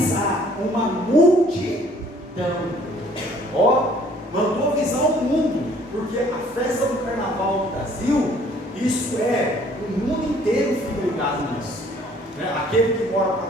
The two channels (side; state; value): both; normal; correlation 0.58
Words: uma multidão. Ó, mandou avisar o mundo, porque a festa do carnaval no Brasil, isso é, o mundo inteiro fica ligado nisso. Né? Aquele que mora para